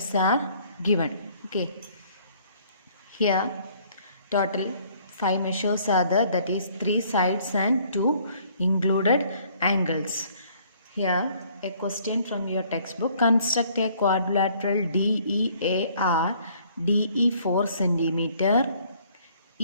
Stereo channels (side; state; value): both; inverted; correlation -0.61